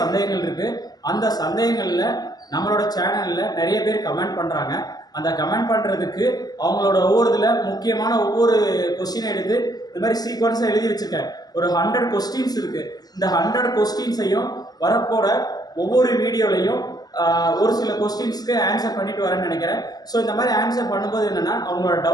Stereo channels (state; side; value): late; right; 0.19 ms